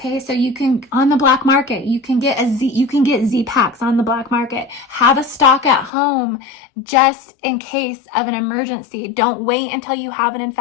so you can, on the black market, you can get Z-Packs on the black market. Have a stock at home just in case of an emergency. Don't wait until you have an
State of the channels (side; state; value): right; drops out; at 5.9 s